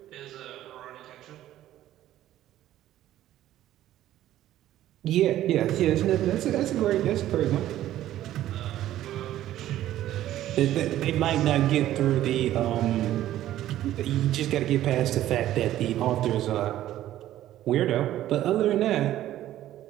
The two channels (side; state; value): left; quieter; 13.3 dB